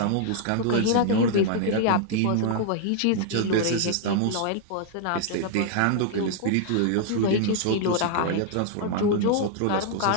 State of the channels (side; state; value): both; different; correlation 0.00